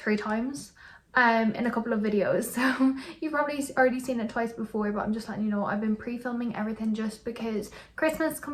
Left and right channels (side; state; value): both; identical; correlation 1.00